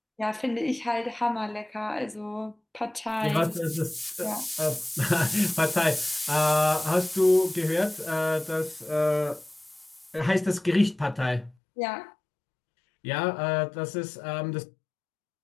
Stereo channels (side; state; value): right; drops out; at 11.6 s